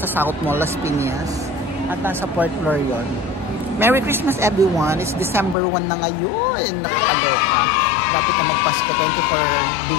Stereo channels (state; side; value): drops out; right; at 5.6 s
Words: South Mall, Las Piñas. At nasa 4th floor yun. Merry Christmas everyone. It's December 1 na ngayon. Nakakaloka. Dapat na magpasko. 24